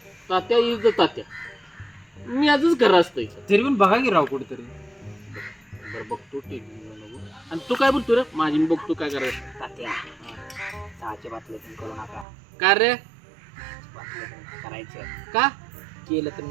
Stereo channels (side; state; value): left; drops out; at 12.2 s